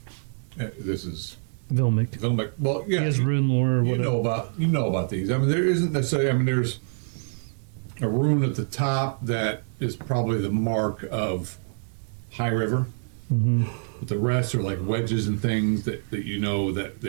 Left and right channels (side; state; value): left; silent; digital silence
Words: this is Vilmic. well, yeah. He has rune lore or You whatever. know about these. I mean, there isn't necessarily. I mean, there's a rune at the top that is probably the mark of High River. Mm-hmm. But the rest are like wedges and things that you know that